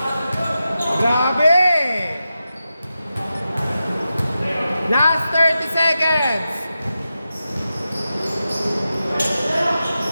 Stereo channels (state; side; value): inverted; both; correlation -0.91